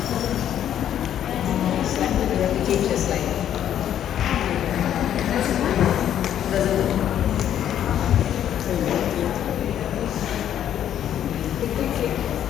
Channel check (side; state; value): right; quieter; 10.5 dB